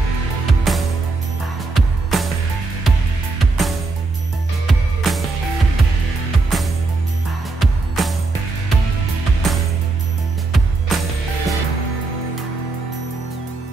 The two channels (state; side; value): quieter; left; 3.6 dB